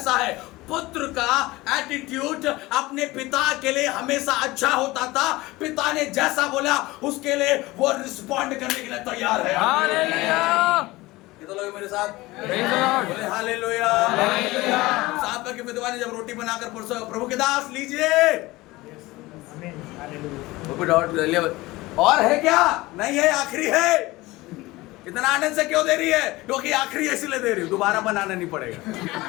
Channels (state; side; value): quieter; right; 20.1 dB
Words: है। पुत्र का एटीट्यूड अपने पिता के लिए हमेशा अच्छा होता था, पिता ने जैसा बोला उसके लिए वो रिस्पॉन्ड करने के लिए तैयार है। हालेलुया। कितने लोग मेरे साथ प्रेज द लॉर्ड। बोले हालेलुया। साहब की विधवा ने जब रोटी बनाकर प्रभु के दास लीजिए, आमीन हालेलुया। और है क्या? नहीं है, आखिरी है। इतना आनंद से क्यों दे रही है? क्योंकि आखिरी है इसलिए दे रही हूं, दोबारा बनाना नहीं पड़ेगा।